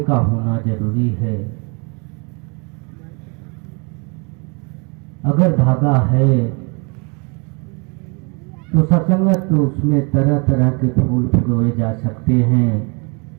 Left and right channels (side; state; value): left; quieter; 32.8 dB